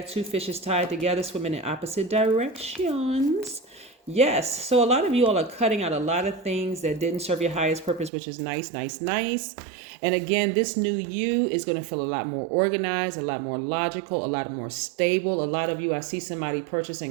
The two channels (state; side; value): drops out; left; at 8.1 s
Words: two fishes tied together, swimming in opposite directions. Yes. So a lot of you all are cutting out a lot of things that didn't serve your highest purpose, which is nice. And again, this new you is going to feel a lot more organized, a lot more logical, a lot more stable. A lot of you, I see somebody